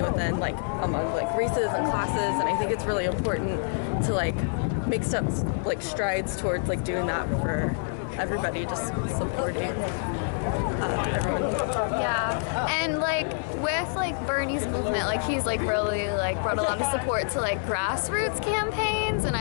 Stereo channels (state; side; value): silent; right; digital silence